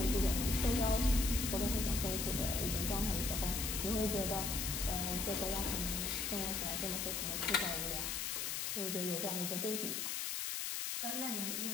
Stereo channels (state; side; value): noise; left; hiss, 1 dB below the sound